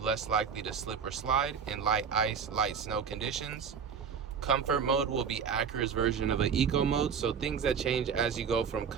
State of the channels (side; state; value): left; quieter; 6.6 dB